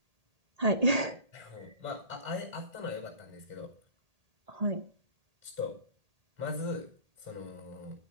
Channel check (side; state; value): left; late; 1.8 ms